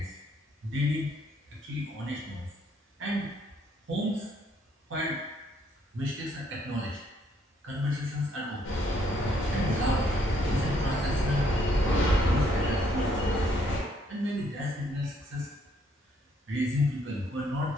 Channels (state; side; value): normal; both; correlation 0.69